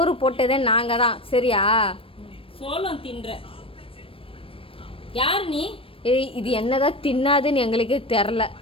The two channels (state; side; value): late; right; 0.26 ms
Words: போட்டதே நாங்கள் தான் சரியா? சோளம் தின்ற யார் நீ? ஏய் இது என்னதான் தின்னாதுன்னு எங்களுக்கே தெரில.